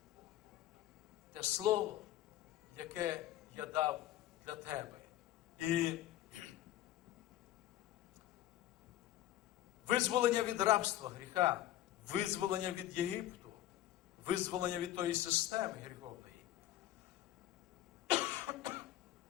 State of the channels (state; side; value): quieter; right; 13.6 dB